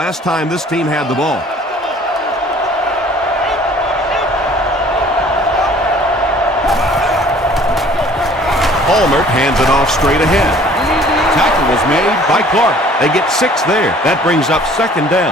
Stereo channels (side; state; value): both; normal; correlation 0.53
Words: time this team had the ball. Palmer hands it off straight ahead. Tackle was made by Clark. They get 6 there. That brings up second